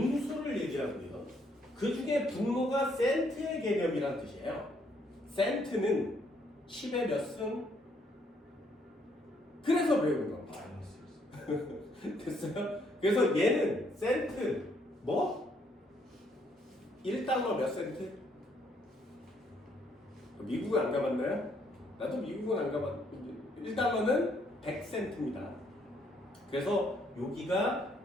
얘기하고요. 그 중에 분모가 센트의 개념이란 뜻이에요. 센트는 10의 몇 승? 그래서 배우는 겁니다. 됐어요? 그래서 얘는 센트 뭐? 1달러 몇 센트? 미국은 안 가봤나요? 나도 미국은 안 가봤는데 1달러는 100센트입니다. 그래서 여기가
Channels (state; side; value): normal; both; correlation 0.69